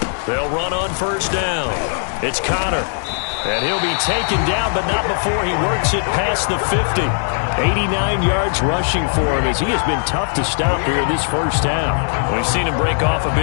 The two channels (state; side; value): silent; right; digital silence